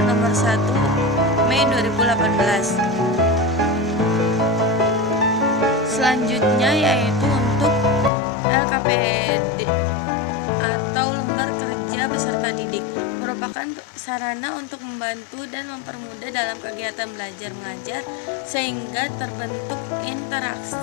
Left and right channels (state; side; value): drops out; right; at 8.1 s